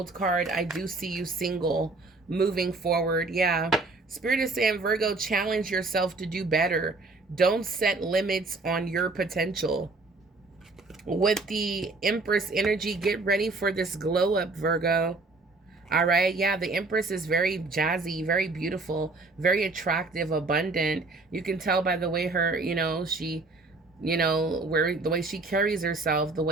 card, I do see you single, moving forward. Yeah. Spirit is saying, Virgo, challenge yourself to do better. Don't set limits on your potential. With the Empress energy, get ready for this glow up, Virgo. All right. Yeah, the Empress is very jazzy, very beautiful, very attractive, abundant. You can tell by the way her, you know, she You know, where the way she carries herself, the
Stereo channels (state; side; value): quieter; left; 3.5 dB